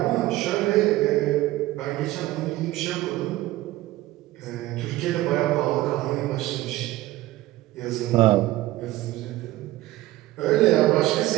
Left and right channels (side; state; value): left; quieter; 16.9 dB